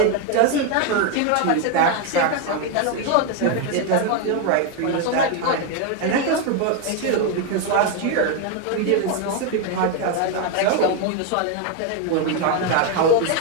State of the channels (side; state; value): both; different; correlation 0.01